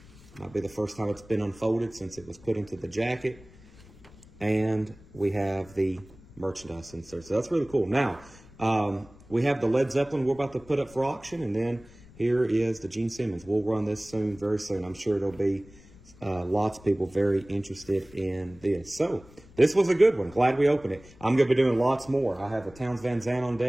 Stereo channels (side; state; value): left; noise; rumble, 23 dB below the sound